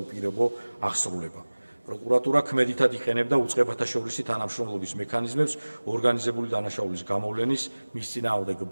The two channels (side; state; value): both; inverted; correlation -1.00